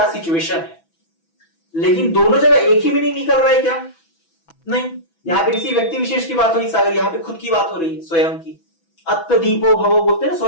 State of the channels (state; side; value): late; right; 6.1 ms